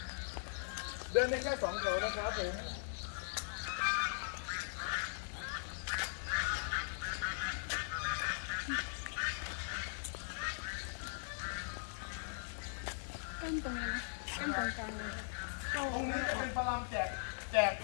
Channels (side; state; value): right; silent; digital silence